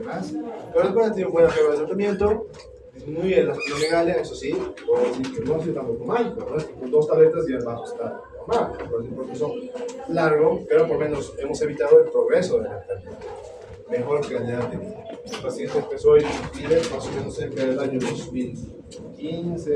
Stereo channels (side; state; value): both; identical; correlation 1.00